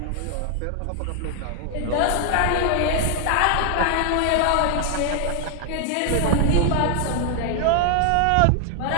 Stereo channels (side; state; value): both; different; correlation 0.00